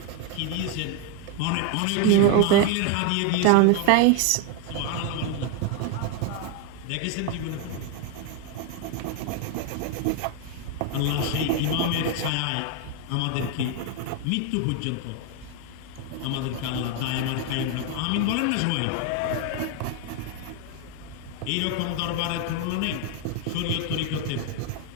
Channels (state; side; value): different; both; correlation 0.01